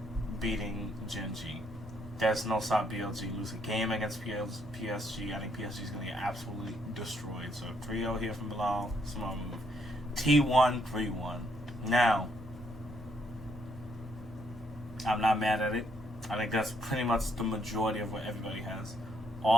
beating Gen G. There's no stop BLG lose a game against PSG. I think PSG is going to get absolutely destroyed. So 3-0 here from Bilal. Smart move. T1 3-1. Now, I'm not mad at it. I think that's pretty much the majority of what everybody has.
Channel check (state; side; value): normal; both; correlation 0.73